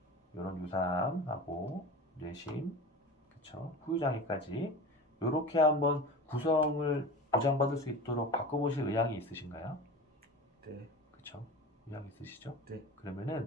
이런 유사암하고 뇌심, 그쵸? 후유장애까지 요렇게 한번 구성을 보장받을 수 있도록 바꿔보실 의향이 있으신가요? 네. 그쵸? 의향 있으시죠? 네.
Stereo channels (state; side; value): normal; both; correlation 0.32